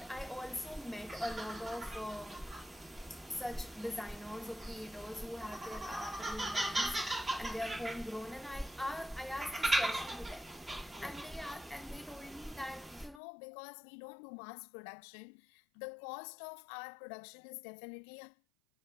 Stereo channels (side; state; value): right; drops out; at 13.2 s